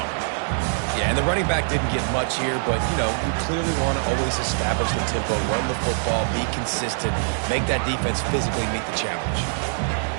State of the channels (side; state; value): left; silent; 63 dB below the other